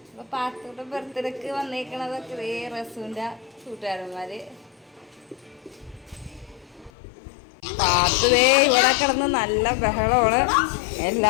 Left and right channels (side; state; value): right; drops out; at 6.9 s